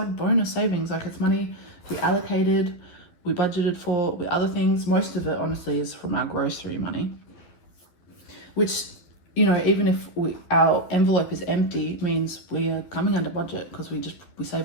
bonus savings, like it's money we allocated, we budgeted for with other things. Most of it, honestly, is from our grocery money, which, you know, even if our envelope is empty, means we are coming under budget because we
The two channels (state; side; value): late; right; 11 ms